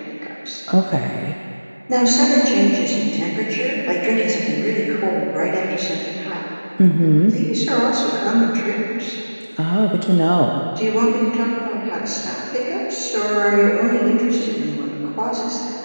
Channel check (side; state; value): both; inverted; correlation -1.00